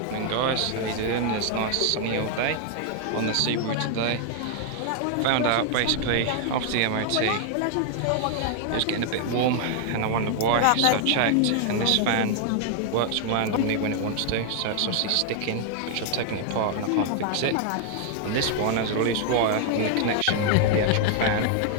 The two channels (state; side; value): different; both; correlation 0.00